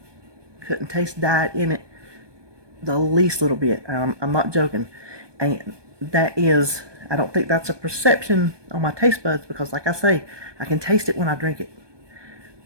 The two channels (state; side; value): late; left; 1.2 ms